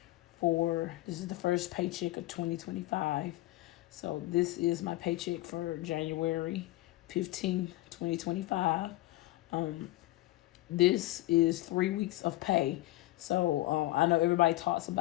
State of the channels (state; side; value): quieter; right; 17.6 dB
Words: this is the first paycheck of 2025. So this is my paycheck for January 15, 2025. This is 3 weeks of pay. So I know everybody talks